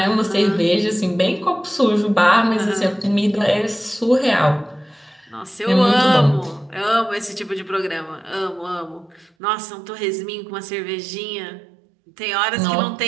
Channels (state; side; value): drops out; left; at 9.3 s